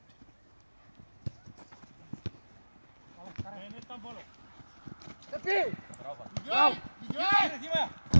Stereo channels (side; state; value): both; inverted; correlation -1.00